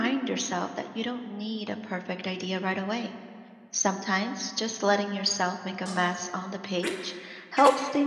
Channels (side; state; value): both; identical; correlation 1.00